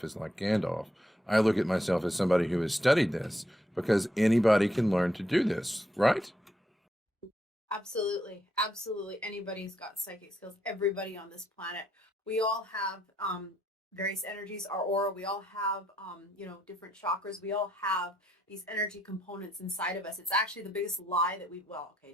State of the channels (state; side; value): normal; both; correlation 0.75